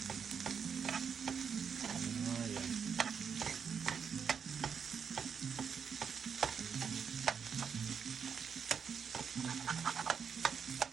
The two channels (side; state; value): left; quieter; 6.8 dB